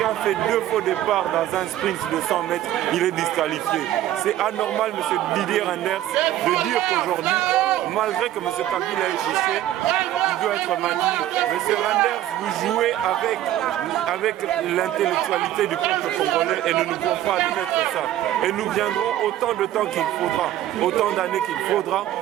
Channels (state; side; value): quieter; left; 13.1 dB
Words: fait 2 faux départs dans un sprint de 100 mètres, il est disqualifié. C'est anormal, M. Didier Renders, de dire qu'aujourd'hui, malgré que M. Kabila est triché, il doit être maintenu. M. Renders, vous jouez avec l'intellectualité du peuple congolais et nous ne pouvons pas admettre ça. Et nous viendrons autant de temps qu'il faudra, autant d'années qu'il faudra